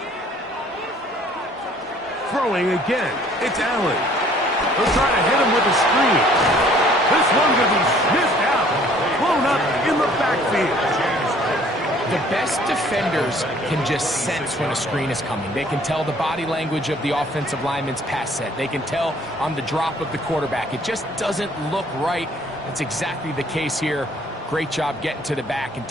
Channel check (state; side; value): normal; both; correlation 0.57